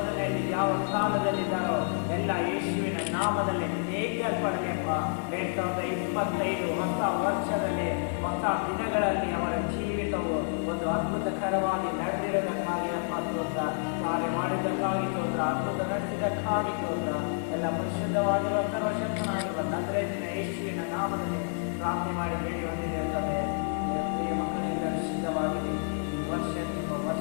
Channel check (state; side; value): silent; right; digital silence